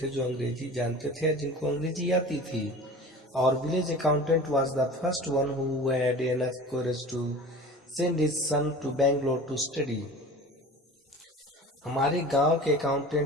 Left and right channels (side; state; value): both; normal; correlation 0.38